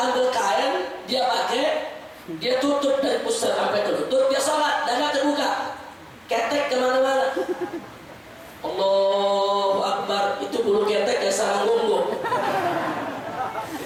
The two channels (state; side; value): identical; both; correlation 1.00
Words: ambil kain, dia pakai, dia tutup dari pusar sampai ke lutut, dia sholat, dada terbuka, ketek kemana-mana. Allahu Akbar, itu bulu ketek ya sarang gonggong.